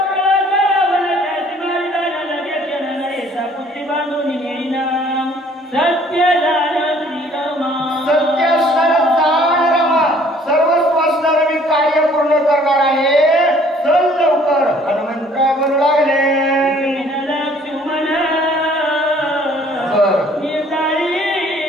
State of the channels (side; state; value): both; normal; correlation 0.57